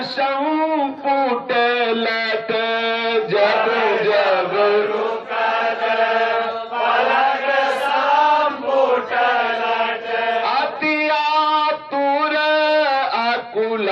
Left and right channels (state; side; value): identical; both; correlation 1.00